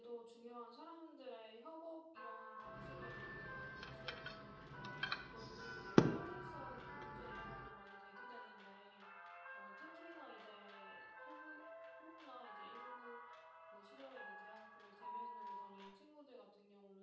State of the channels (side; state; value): both; identical; correlation 1.00